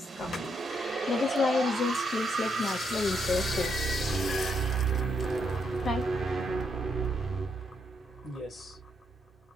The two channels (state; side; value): normal; both; correlation 0.77